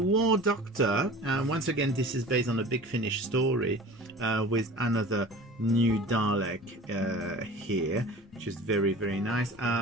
Doctor. Once again, this is based on a Big Finish story with another new Dalek here, which is very, very nice.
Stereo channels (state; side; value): normal; both; correlation 0.40